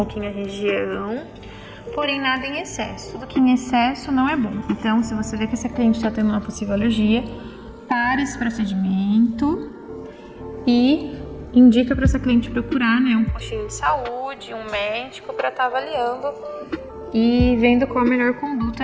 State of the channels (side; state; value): both; identical; correlation 1.00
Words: a região. Porém, nada em excesso. Tudo que em excesso não é bom. Então, se você vê que essa cliente está tendo uma possível alergia, pare esse procedimento e indica para essa cliente procurar, né, um postinho de saúde, um médico para estar avaliando e vendo qual a melhor